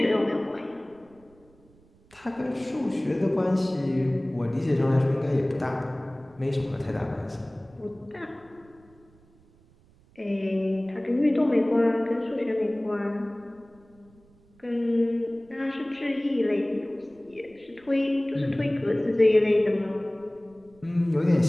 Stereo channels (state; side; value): noise; right; rumble, 29 dB below the sound